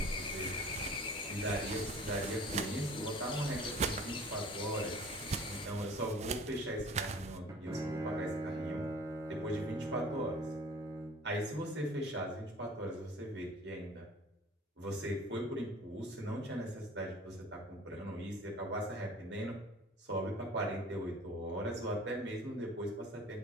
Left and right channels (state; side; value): normal; both; correlation 0.46